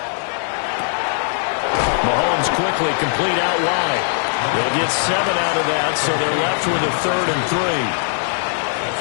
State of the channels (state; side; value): silent; right; digital silence